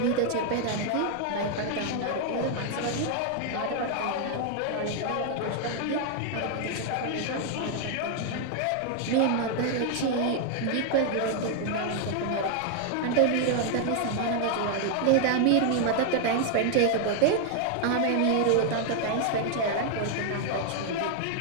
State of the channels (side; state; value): both; different; correlation 0.00